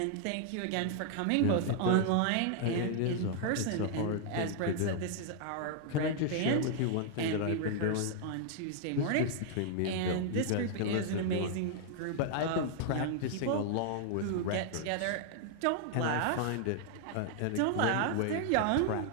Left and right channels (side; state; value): both; different; correlation 0.00